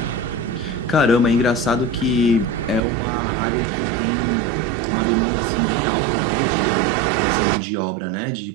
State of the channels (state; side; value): drops out; left; at 2.8 s